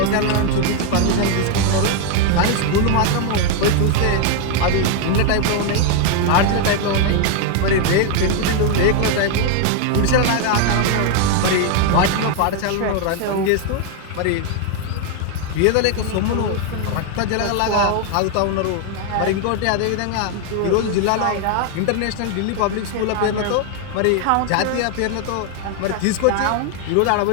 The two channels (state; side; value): different; both; correlation 0.01